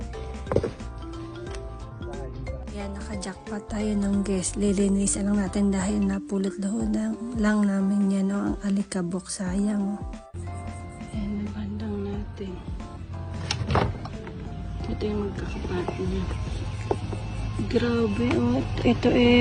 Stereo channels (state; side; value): identical; both; correlation 1.00